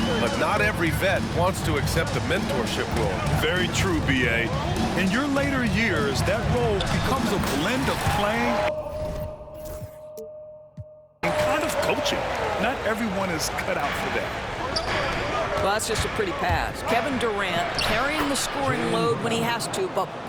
but not every vet wants to accept a mentorship role. Very true, B.A. In your later years, that role becomes a blend of playing and kind of coaching. Not everyone is cut out for that. Well, that's just a pretty pass. Kevin Durant carrying the scoring load when he has to, but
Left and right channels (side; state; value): both; identical; correlation 1.00